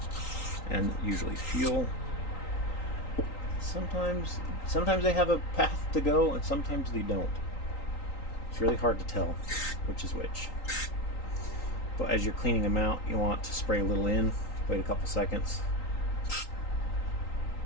and usually fuel. Sometimes they have a path to go and sometimes they don't. It's really hard to tell which is which. But as you're cleaning them out, you want to spray a little in, wait a couple seconds.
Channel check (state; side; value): late; right; 3.9 ms